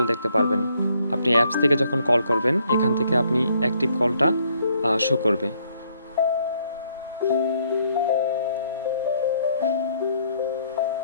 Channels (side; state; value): both; inverted; correlation -0.69